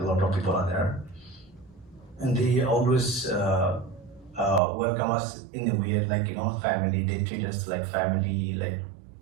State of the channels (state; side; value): drops out; left; at 4.6 s